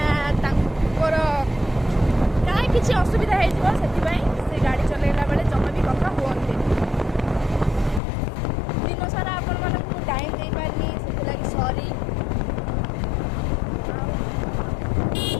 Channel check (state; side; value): drops out; right; at 8.0 s